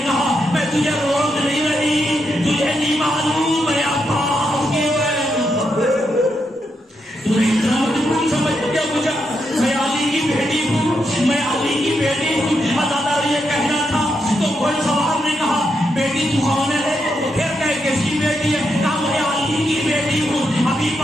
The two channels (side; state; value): both; normal; correlation 0.82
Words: کہا میں تجھے روک نہیں رہی، تجھے نہیں معلوم ہے عباس کی تمہیں اتنا مجبور سمجھ کیا مجھے، میں علی کی بیٹی ہوں، میں علی کی بیٹی ہوں۔ اللہ تعالیٰ یہ کہنا تھا تو گھوڑ سوار نے کہا بیٹی تو کون ہے، پھر کہ کس کی بیٹی ہے، کہا میں علی کی بیٹی ہوں، ابھی